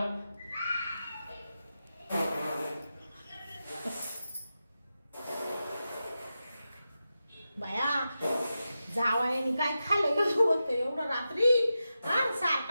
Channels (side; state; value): both; inverted; correlation -0.91